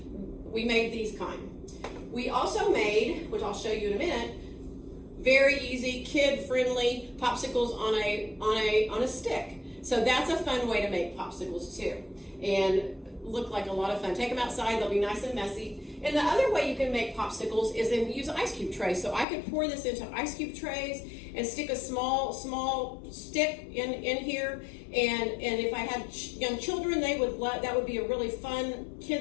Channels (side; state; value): right; drops out; at 19.2 s